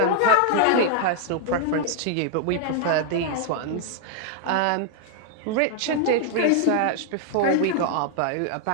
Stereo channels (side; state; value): both; different; correlation 0.00